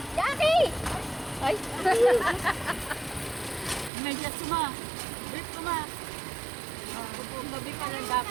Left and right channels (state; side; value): drops out; left; at 3.9 s